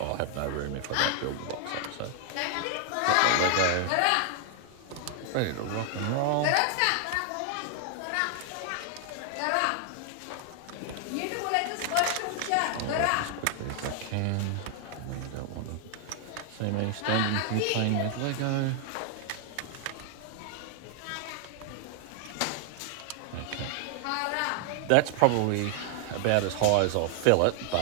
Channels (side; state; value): both; different; correlation 0.00